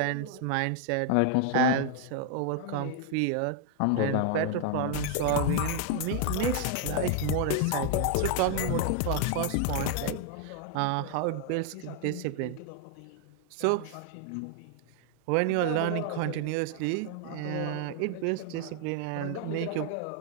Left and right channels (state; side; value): different; both; correlation 0.00